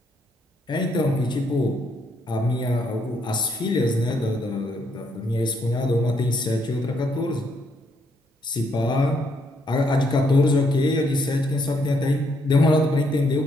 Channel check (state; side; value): normal; both; correlation 0.73